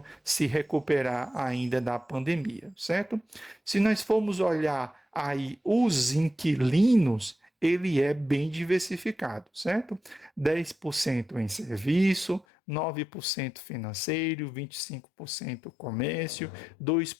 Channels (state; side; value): drops out; right; at 12.5 s